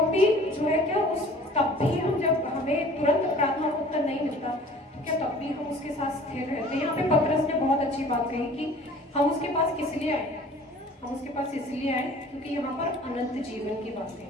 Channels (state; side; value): normal; both; correlation 0.48